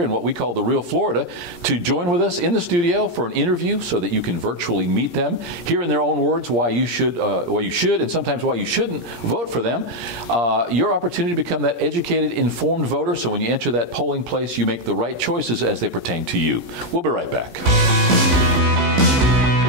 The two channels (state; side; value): late; left; 15 ms